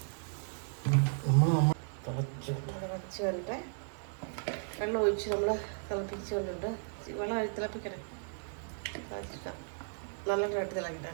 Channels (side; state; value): left; silent; digital silence